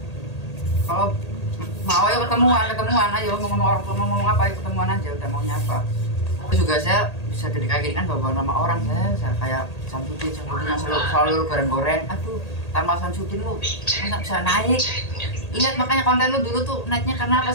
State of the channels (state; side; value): late; right; 1.8 ms